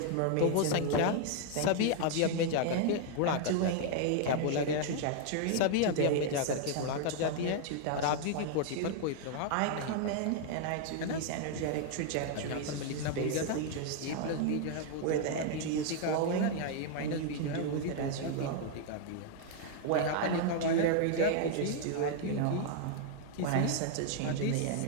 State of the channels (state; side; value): different; both; correlation 0.00